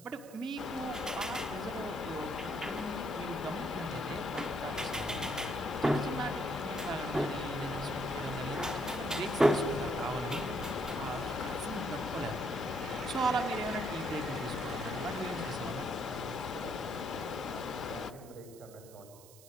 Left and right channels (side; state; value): right; noise; hiss, 20 dB below the sound